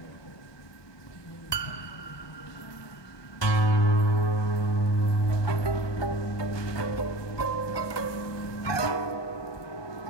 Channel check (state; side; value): late; right; 1.2 ms